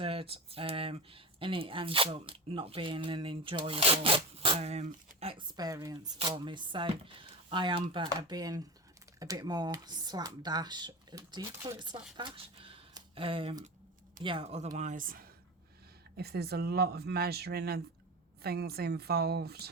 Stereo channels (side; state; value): both; normal; correlation 0.26